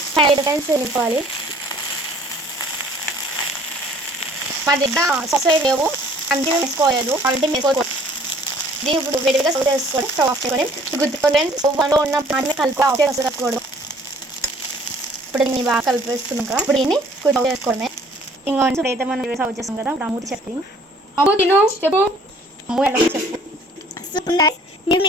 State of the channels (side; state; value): both; normal; correlation 0.56